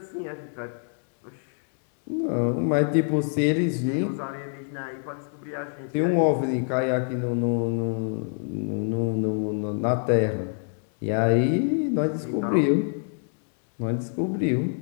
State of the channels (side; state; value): right; silent; 61 dB below the other